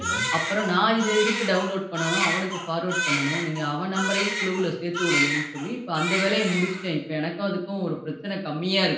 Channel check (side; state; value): both; identical; correlation 1.00